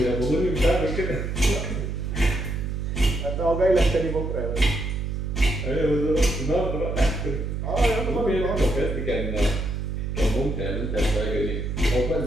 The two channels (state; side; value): noise; right; hum, 3 dB below the sound